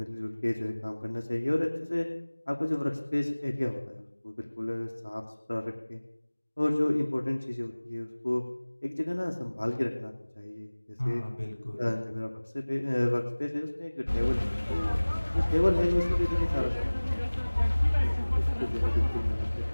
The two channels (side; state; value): both; inverted; correlation -1.00